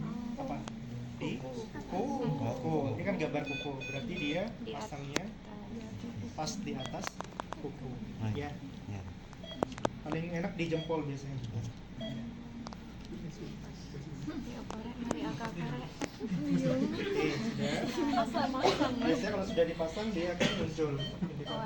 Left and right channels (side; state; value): both; identical; correlation 1.00